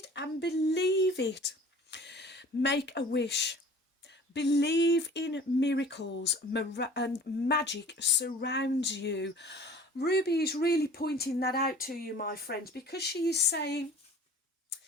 and believe it. Make a wish. Believe in miracles, and magic surrounds you. Ruby is really pointing that out to you, my friends, because she is saying,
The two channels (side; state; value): both; normal; correlation 0.46